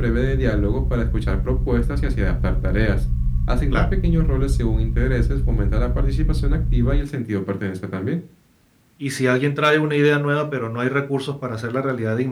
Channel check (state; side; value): identical; both; correlation 1.00